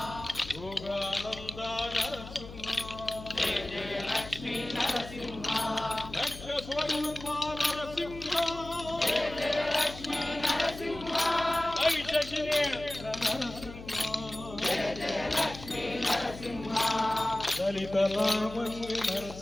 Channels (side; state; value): left; noise; hum, 14 dB below the sound